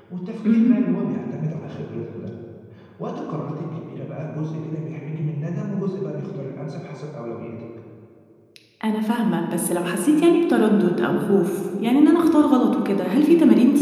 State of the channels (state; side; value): identical; both; correlation 1.00